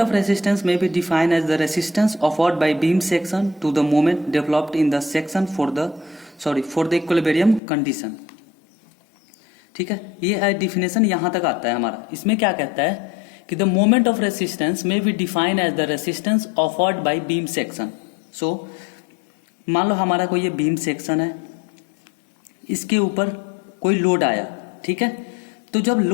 ऑफ रेसिस्टेंस में be define as the resistance offered by beam section to the moment developed in the section for the equilibrium condition. ठीक है, ये डिफिनेशन यहां तक आता है हमारा। इसमें क्या कहता है कि द मोमेंट ऑफ रेसिस्टेंस में be define as the resistance offered by beam section. So मान लो हमारा कोई ये बीम सेक्शन है, इसके ऊपर कोई लोड आया, ठीक है। तो जब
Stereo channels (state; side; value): drops out; right; at 7.6 s